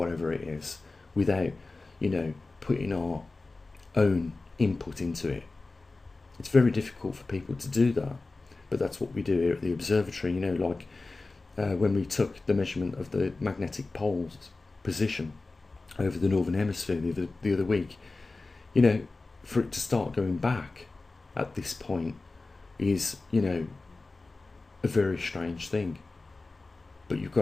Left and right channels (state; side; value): quieter; right; 3.5 dB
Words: it is, without, putting our own input into it. It's very difficult for people to do that, but that's what we do here at the observatory. When we took the measurement of the magnetic pole's position over the northern hemisphere the other week, for it to start going back at this point is, a very strange thing. But you've got